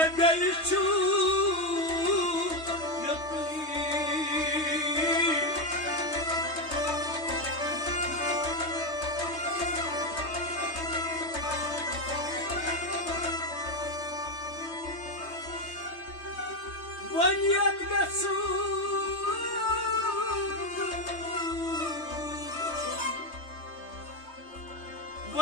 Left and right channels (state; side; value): late; right; 3.2 ms